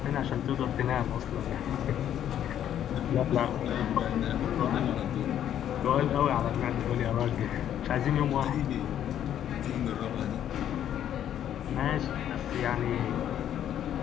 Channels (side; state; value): right; quieter; 10.5 dB